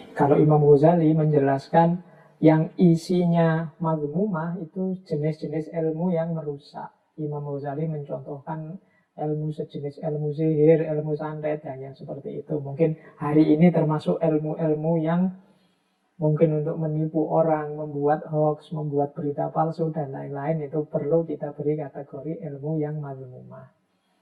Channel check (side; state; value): both; identical; correlation 1.00